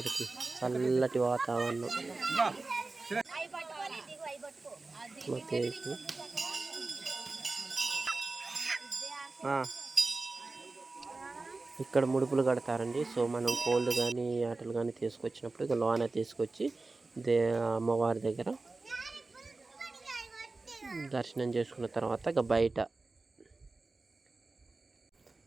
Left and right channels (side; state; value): left; quieter; 3.5 dB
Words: చల్లటి వాతావరణం. ఇక్కడ ముడుపులు కడతారండి. సో మనం కోళ్ళు కానీ ఆటలు కానీ తీసుకొచ్చినప్పుడు ఇక లోన తీసుకొచ్చి అమ్మవారి దగ్గర దర్శనం చేసుకున్న తర్వాత ఇక బయట